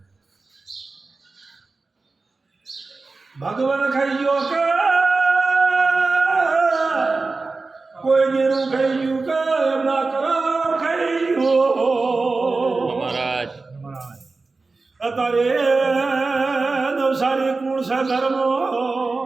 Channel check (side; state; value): left; quieter; 3.8 dB